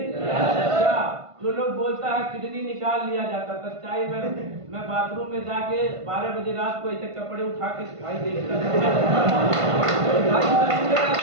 क्या जो लोग बोलता है किडनी निकाल लिया जाता, सच्चाई में मैं बाथरूम में जाके 12 बजे रात को ऐसे कपड़े उठा के भाई देखता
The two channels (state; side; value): late; left; 1.5 ms